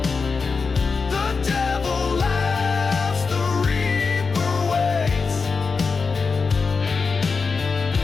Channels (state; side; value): quieter; right; 4.8 dB